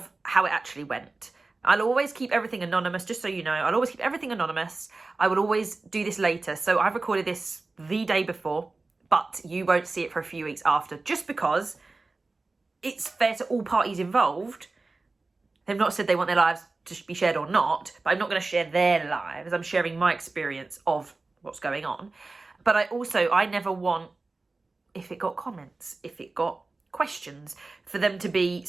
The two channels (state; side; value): quieter; left; 3.5 dB